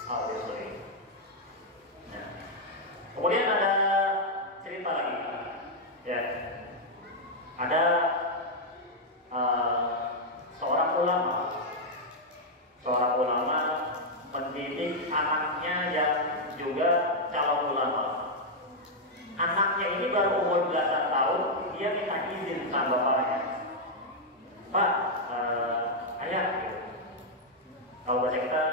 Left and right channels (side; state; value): both; normal; correlation -0.02